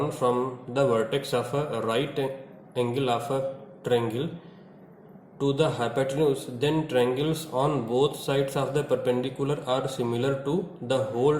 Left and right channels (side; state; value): both; identical; correlation 1.00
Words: from the vertex of a right angle of a triangle to the hypotenuse then triangles on both sides of the perpendicular are similar to the whole